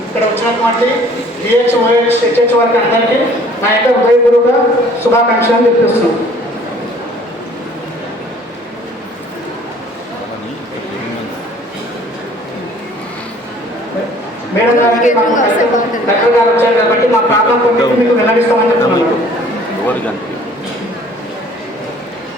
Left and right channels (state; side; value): normal; both; correlation 0.54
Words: ఇక్కడ వచ్చినటువంటి డిహెచ్, ఓహెచ్, హెచ్హెచ్ వారికి అందరికీ నా యొక్క హృదయపూర్వక శుభాకాంక్షలు చెప్పిస్తున్నాం. మేడం గారికి కలెక్టర్ గారు వచ్చారు కాబట్టి మా ప్రాబ్లం కొట్టి మీకు వెల్లడిస్తామని చెప్తున్నాను.